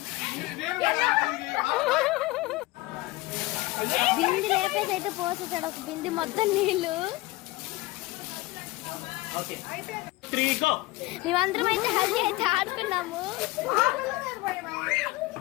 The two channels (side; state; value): right; quieter; 19.9 dB